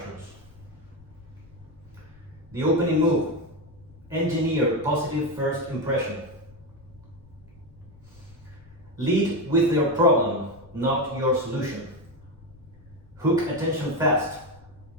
The opening move. Engineer positive first impression. Lead with your problem, not your solution. Hook attention fast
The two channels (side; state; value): left; noise; rumble, 24 dB below the sound